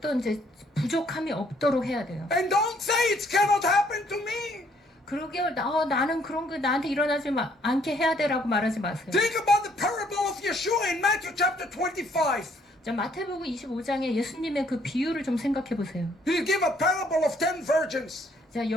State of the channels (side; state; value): both; normal; correlation 0.65